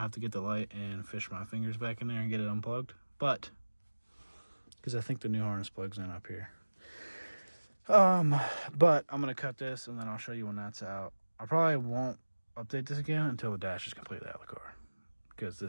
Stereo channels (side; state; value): both; inverted; correlation -1.00